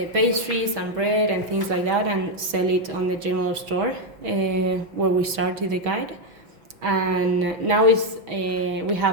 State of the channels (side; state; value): left; late; 6.2 ms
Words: and bread and things like that and sell it on the general store where we started the guide. And now we